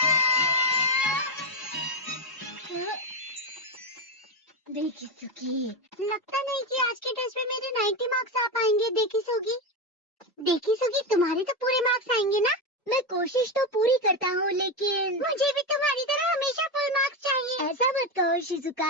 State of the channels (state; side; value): normal; both; correlation 0.12